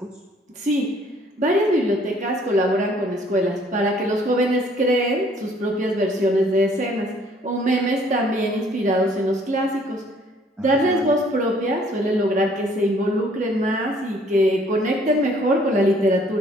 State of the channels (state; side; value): normal; both; correlation 0.60